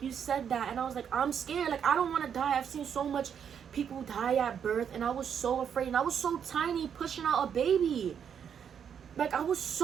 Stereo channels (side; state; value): left; quieter; 7.9 dB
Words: you said that. And I was like, I'm scared. Like, I don't want to die. I've seen so much people die at birth. And I was so afraid. And I was so tiny pushing out a baby. Like, I was